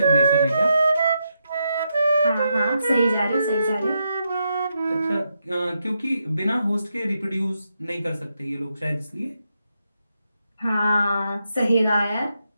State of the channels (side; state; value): both; inverted; correlation -0.83